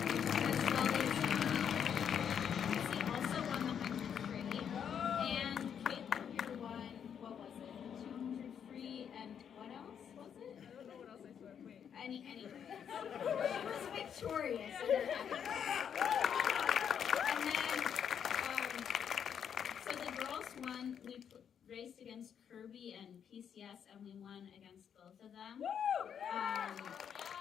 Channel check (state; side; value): quieter; right; 8.1 dB